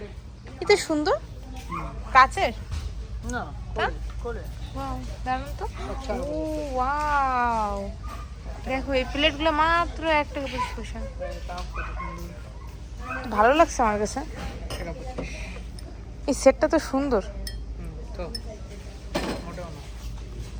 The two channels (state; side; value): identical; both; correlation 1.00